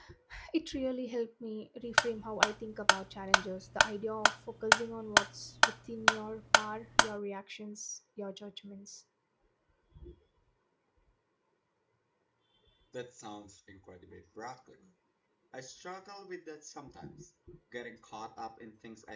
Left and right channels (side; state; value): both; identical; correlation 1.00